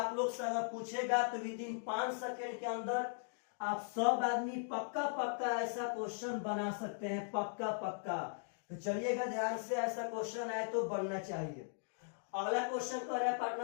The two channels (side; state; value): right; silent; digital silence